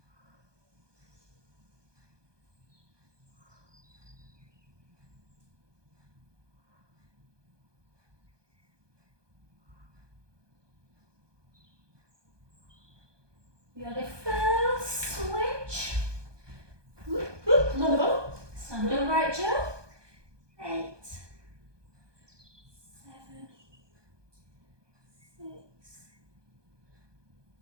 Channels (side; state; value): left; late; 1.2 ms